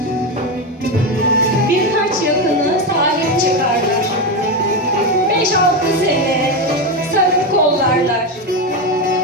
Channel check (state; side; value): normal; both; correlation 0.12